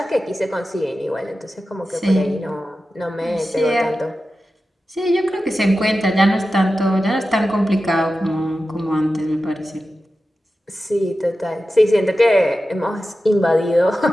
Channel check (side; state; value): both; normal; correlation 0.93